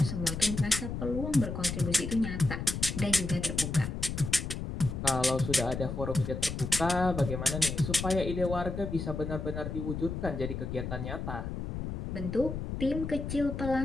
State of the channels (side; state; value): left; noise; rumble, 5 dB below the sound